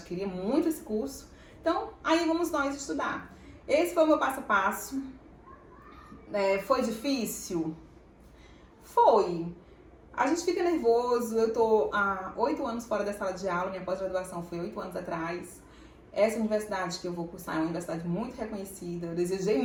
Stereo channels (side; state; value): both; identical; correlation 1.00